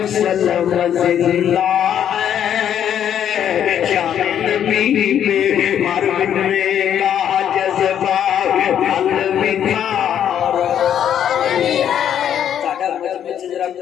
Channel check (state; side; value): quieter; right; 9.6 dB